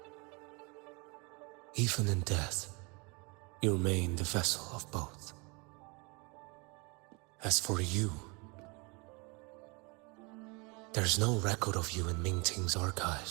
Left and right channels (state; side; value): quieter; left; 29.5 dB